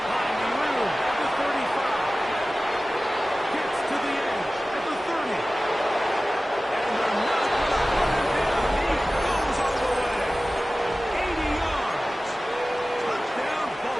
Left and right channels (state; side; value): normal; both; correlation 0.96